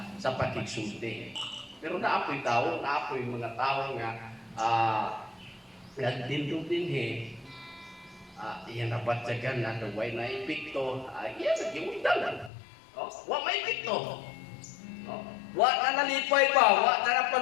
sa pakigsulti. Pero naapoy tao, naapoy mga tao nga nagdindog dinhi. Iyan nabatyagan na way na ipikto, iyan nagimundalan. Wa may ipikto. Wa na nalipay pa, wa na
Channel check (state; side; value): drops out; right; at 12.5 s